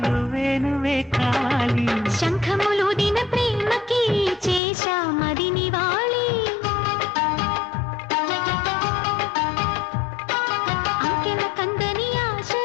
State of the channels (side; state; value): right; drops out; at 4.6 s